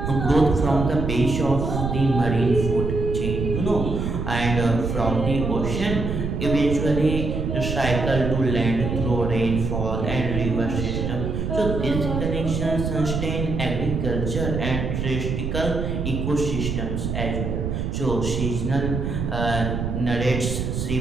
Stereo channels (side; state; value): right; noise; rumble, 2 dB below the sound